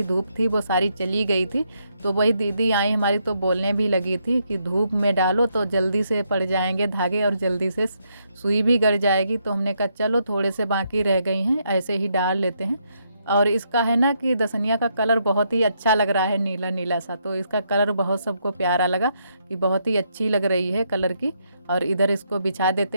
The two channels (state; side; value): inverted; both; correlation -0.77